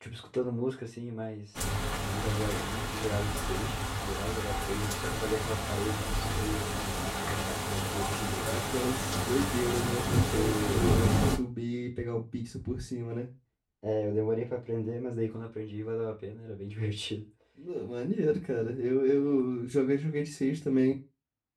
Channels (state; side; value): identical; both; correlation 1.00